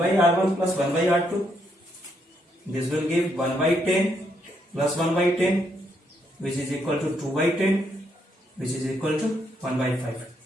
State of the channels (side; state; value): both; normal; correlation 0.75